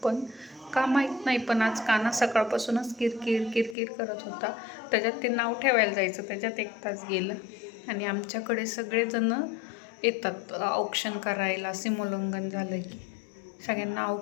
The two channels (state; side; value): drops out; right; at 3.8 s